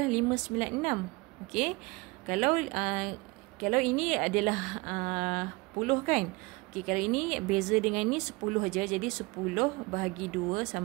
596. Okey, kalau ini adalah 10 kan? Okey, kalau ini beza dengan ni 10 aja. Jadi 10 bahagi 2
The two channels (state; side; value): quieter; left; 24.2 dB